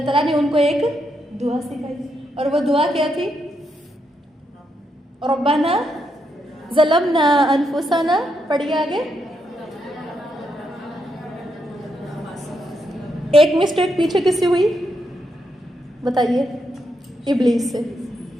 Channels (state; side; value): normal; both; correlation 0.80